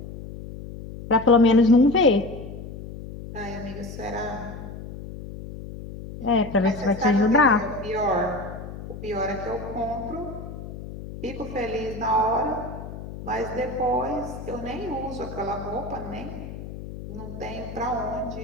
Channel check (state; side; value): noise; left; hum, 11 dB below the sound